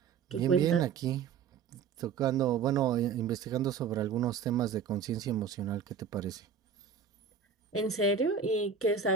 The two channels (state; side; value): quieter; left; 6.5 dB